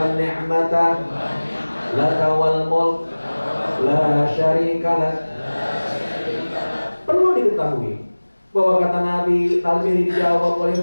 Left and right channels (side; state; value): both; inverted; correlation -1.00